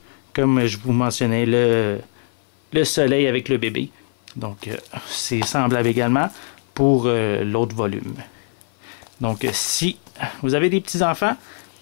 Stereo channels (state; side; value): silent; right; 56 dB below the other